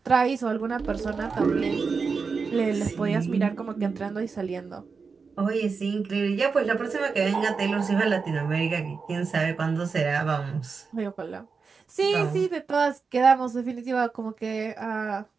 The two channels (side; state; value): left; quieter; 5.0 dB